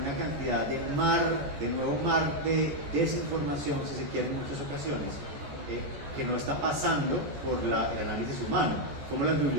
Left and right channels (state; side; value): late; left; 14 ms